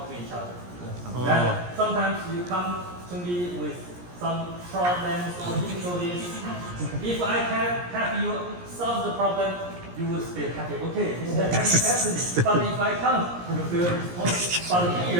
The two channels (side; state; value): left; late; 17 ms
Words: to each other. And sometimes you come to me with some problems or difficulties. If I can help you solve the problem, you will stay happy. Okay, this is happening. But if I can't, you feel responsible. But